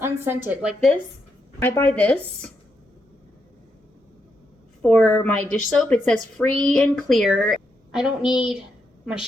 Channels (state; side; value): normal; both; correlation 0.81